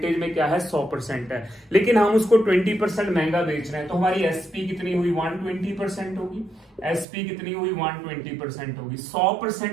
में क्या है, 100% है. लेकिन हम उसको 20% महंगा बेच रहे हैं तो हमारी एसपी कितनी हुई, 120% होगी. एसपी कितनी हुई, 120% होगी.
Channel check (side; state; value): left; drops out; at 7.1 s